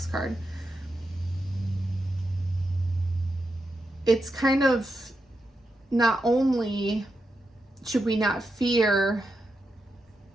card. It's kind of, not only should we not fear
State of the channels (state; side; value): normal; both; correlation 0.86